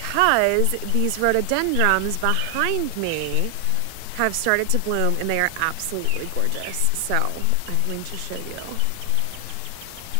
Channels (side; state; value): both; different; correlation 0.00